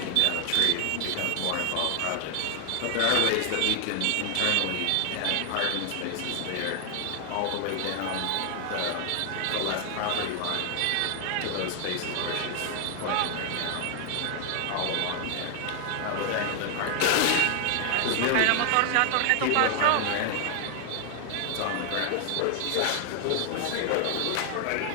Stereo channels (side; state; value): both; different; correlation 0.00